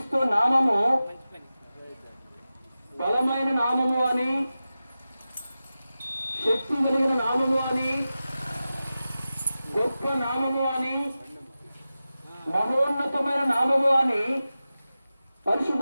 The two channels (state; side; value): inverted; both; correlation -0.94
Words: నామము బలమైన నామము అని, శక్తి కలిగిన నామము అని, గొప్ప నామము అని, మహోన్నతమైన నామము అని